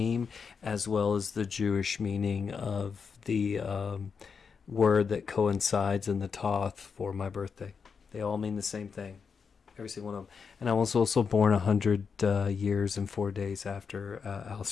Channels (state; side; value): quieter; right; 5.8 dB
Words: as well as the Jewish meaning of the word that coincides in the Toth for my birthday. They all mean the same thing. Every single one of them. And I was also born 100 years and 4 days after